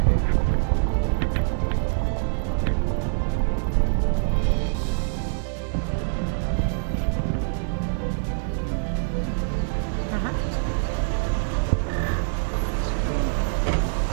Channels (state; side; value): silent; left; digital silence